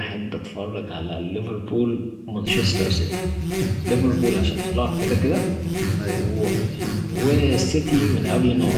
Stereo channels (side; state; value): both; identical; correlation 1.00